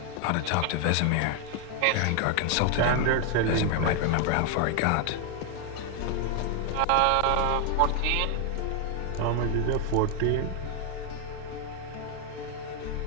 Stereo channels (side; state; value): both; different; correlation 0.00